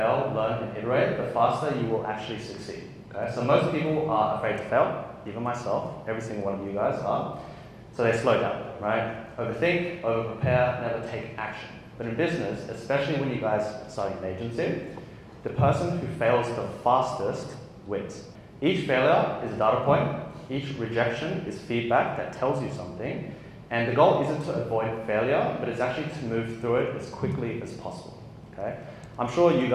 learn, and iterate, the faster you will actually succeed. Okay? So most people are afraid to fail, even myself, every single one of you guys are. So they slow down, right? Overthink, over-prepare, never take action. But in business, especially when you guys are starting an agency, the person who fails the fastest wins. Each failure is a data point, each rejection is feedback that tells you something, and the goal isn't to avoid failure, but it's actually to move through it as quickly as possible, okay? I'm sure you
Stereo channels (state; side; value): identical; both; correlation 1.00